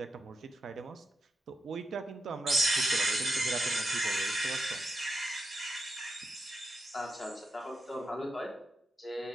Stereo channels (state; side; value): normal; both; correlation 0.87